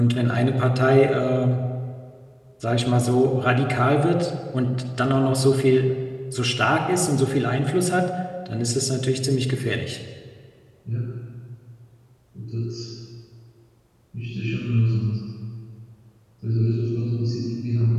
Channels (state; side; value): identical; both; correlation 1.00